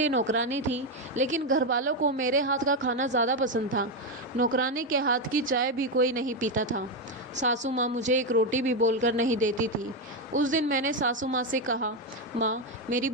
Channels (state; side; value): normal; both; correlation 0.08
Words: नौकरानी थी, लेकिन घर वालों को मेरे हाथ का खाना ज़्यादा पसंद था। नौकरानी के हाथ की चाय भी कोई नहीं पीता था। सासू माँ मुझे एक रोटी भी बोलकर नहीं देती थी। उस दिन मैंने सासू माँ से कहा, माँ मेरी